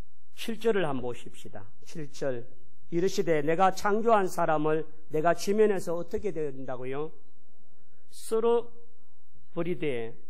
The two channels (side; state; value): both; identical; correlation 1.00